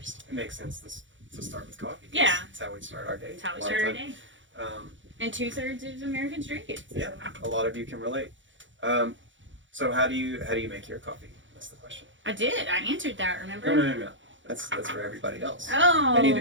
It makes sense to start with coffee. 'Cause Yeah. It's how we start our day. That's how we a lot of start our time. day. Um, And 2/3 of Americans drink it. So. yeah, a lot of you can relate. So how do you make your coffee? That's the question. I did. I answered that, remember? No. That's for everybody else. Oh, I need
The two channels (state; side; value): late; left; 0.55 ms